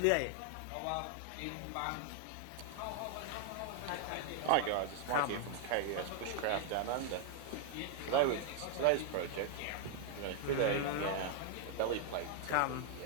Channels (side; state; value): both; different; correlation 0.00